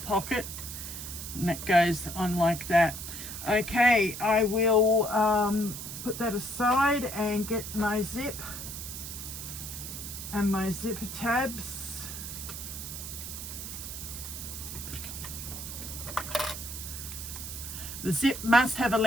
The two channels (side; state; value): right; noise; hiss, 8 dB below the sound